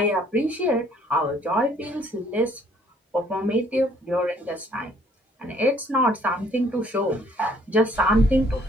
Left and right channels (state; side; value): normal; both; correlation 0.61